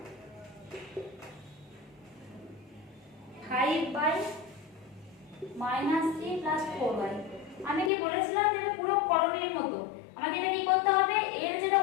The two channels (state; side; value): drops out; right; at 7.9 s